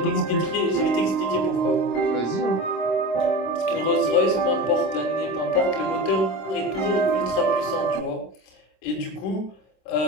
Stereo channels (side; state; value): right; late; 26 ms